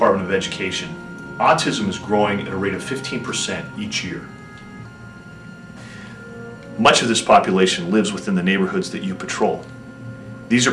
of Education, autism is growing at a rate of 15% each year. Much of this population lives within the neighborhoods that you patrol. These are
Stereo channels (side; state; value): both; identical; correlation 1.00